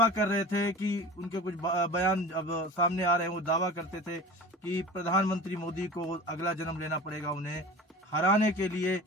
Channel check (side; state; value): both; normal; correlation 0.36